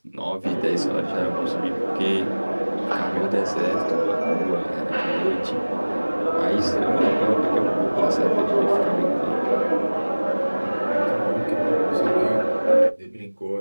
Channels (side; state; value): both; inverted; correlation -1.00